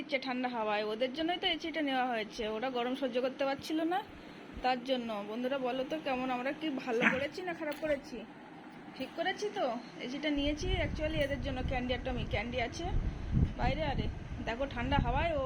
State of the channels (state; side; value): identical; both; correlation 1.00